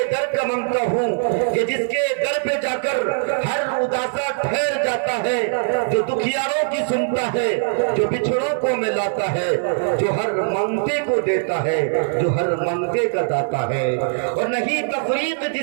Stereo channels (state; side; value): silent; left; digital silence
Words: در کا منگتا ہوں کہ جس کے در پہ جا کر ہر اداسا ٹھہر جاتا ہے جو دکھیاروں کی سنتا ہے جو بچھڑوں کو ملاتا ہے جو ہر منگتے کو دیتا ہے جو ہر منگتے کا داتا ہے اور نہیں تفریق